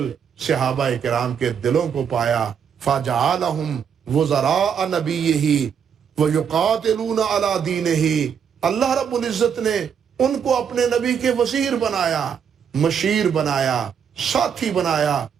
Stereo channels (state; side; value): quieter; left; 7.5 dB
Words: صحابہ کرام کے دلوں کو پایا، فجعلہم وزراء نبیہ ویقاتلون علی دینہ، اللہ رب العزت نے ان کو اپنے نبی کے وزیر بنایا، مشیر بنایا، ساتھی بنایا،